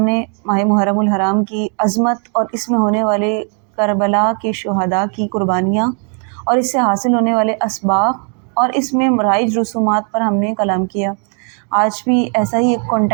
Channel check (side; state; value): left; quieter; 39.6 dB